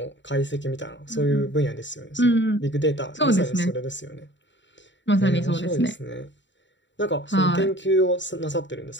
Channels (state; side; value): late; right; 0.53 ms